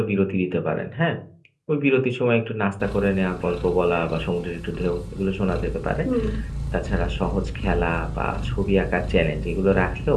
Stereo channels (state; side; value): identical; both; correlation 1.00